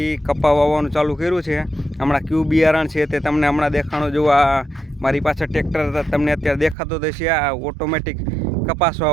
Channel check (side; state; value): left; drops out; at 6.8 s